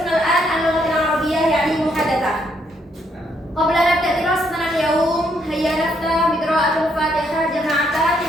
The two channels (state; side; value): normal; both; correlation 0.73